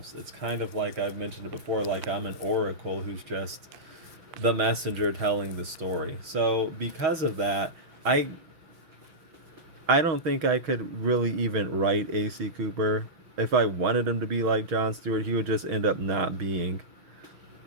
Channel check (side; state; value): left; late; 6.3 ms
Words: It's kind of like I've mentioned it before, like I'm an oracle who's just the messenger telling the story. So because of that, I don't think I could really even write A.C. Cooper. If I wanted him to be like Jon Stewart, he would just end up not being.